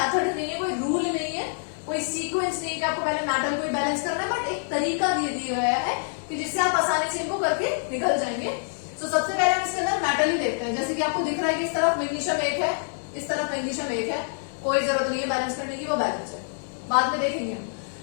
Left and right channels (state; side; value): silent; right; digital silence